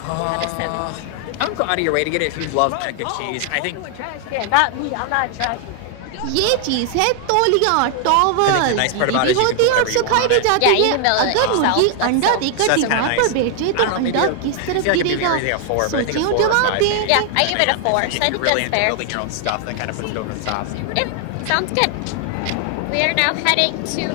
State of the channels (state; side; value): different; both; correlation 0.00